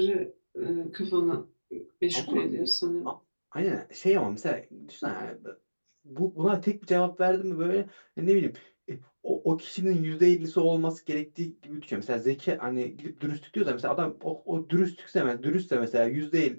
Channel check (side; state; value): both; inverted; correlation -1.00